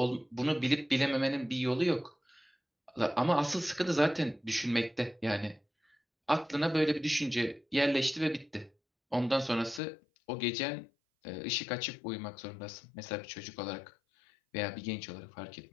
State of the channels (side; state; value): right; drops out; at 9.8 s